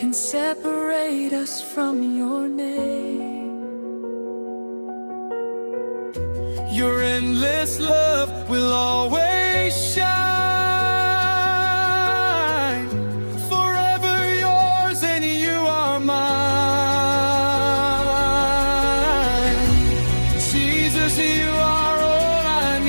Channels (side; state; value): both; inverted; correlation -1.00